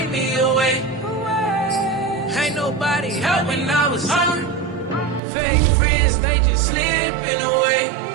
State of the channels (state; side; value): drops out; left; at 5.2 s